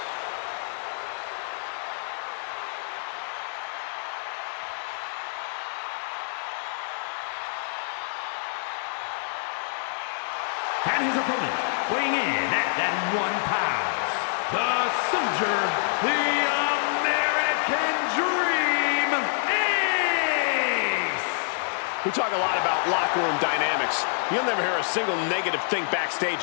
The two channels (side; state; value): right; silent; digital silence